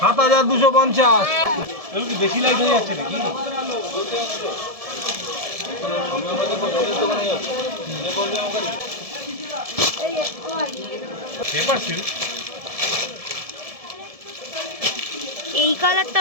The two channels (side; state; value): left; late; 1.7 ms